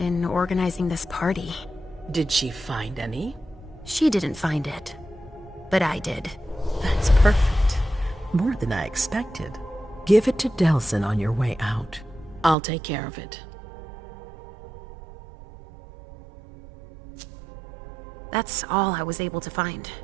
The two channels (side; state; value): left; drops out; at 12.6 s